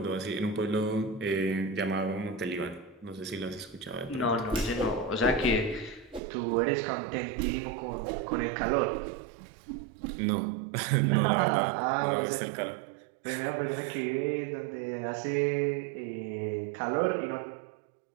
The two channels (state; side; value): drops out; left; at 6.2 s